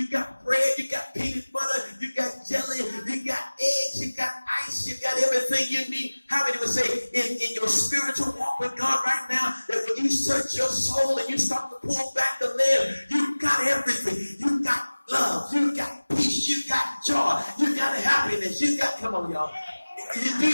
got bread, you got peanut butter, you got jelly, you got eggs, you got ice, you got everything you need. How many would say in your spiritual walk with God right now, that when you search your soul and you start to pull back the lid, you got everything. You got love, you got peace, you got joy, you got happiness, you got, come on y'all. Do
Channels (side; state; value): both; inverted; correlation -1.00